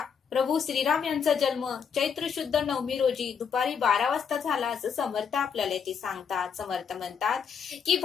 प्रभू श्रीराम यांचा जन्म चैत्र शुद्ध नवमी रोजी दुपारी 12 वाजता झाला असं समर्थ आपल्याला ते सांगतात. समर्थ म्हणतात की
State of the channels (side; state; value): right; quieter; 6.8 dB